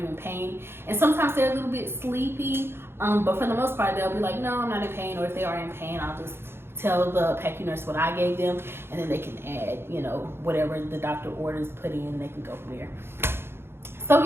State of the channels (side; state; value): left; late; 0.11 ms